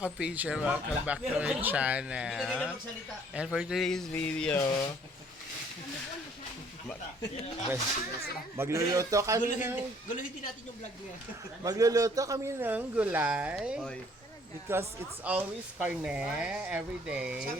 welcome back to my channel. And for today's video, magluluto kami ng Guluhin natin yung vlog niya. magluluto kami ng gulay because it's always carne every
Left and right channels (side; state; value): both; normal; correlation 0.59